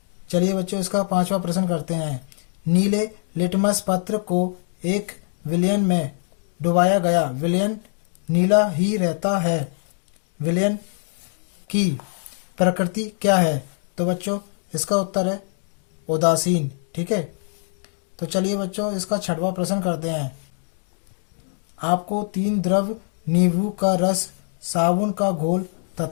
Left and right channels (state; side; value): silent; right; digital silence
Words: चलिए बच्चों इसका पांचवा प्रश्न करते हैं, नीले लिटमस पत्र को एक विलयन में डुबाया गया, विलयन नीला ही रहता है, विलयन की प्रकृति क्या है? तो बच्चों इसका उत्तर है उदासीन। ठीक है, तो चलिए बच्चों इसका छठवां प्रश्न करते हैं, आपको 3 द्रव नींबू का रस, साबुन का घोल